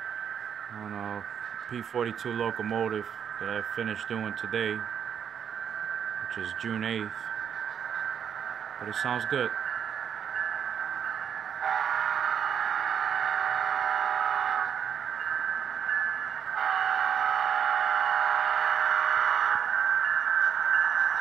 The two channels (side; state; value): left; quieter; 8.1 dB